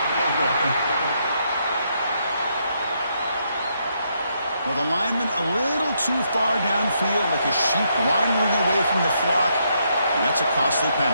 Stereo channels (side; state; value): both; inverted; correlation -0.76